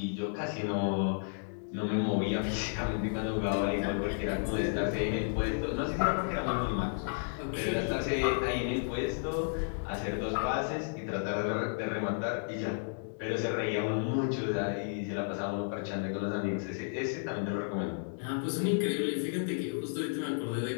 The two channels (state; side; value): silent; right; 56 dB below the other